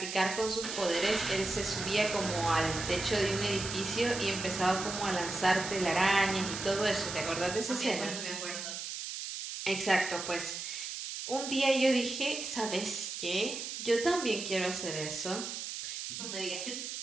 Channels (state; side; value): noise; right; hiss, 6 dB below the sound